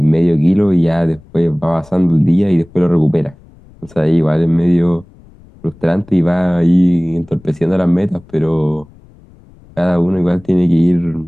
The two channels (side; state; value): left; noise; rumble, 26 dB below the sound